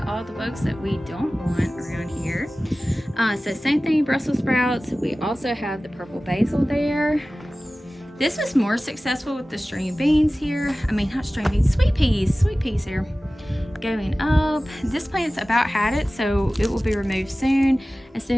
all the bugs that we don't want around here. So same thing, Brussels sprouts. We also have the purple basil there. This was more successful with the string beans here. I mean, not string beans, sweet peas here. Going up, this plant's about had it, so it will be removed soon as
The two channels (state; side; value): normal; both; correlation 0.97